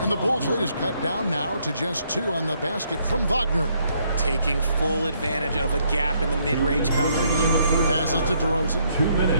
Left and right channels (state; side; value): inverted; both; correlation -0.71